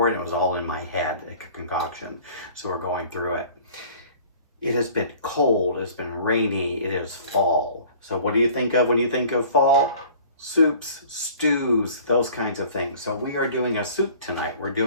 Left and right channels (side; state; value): both; inverted; correlation -0.48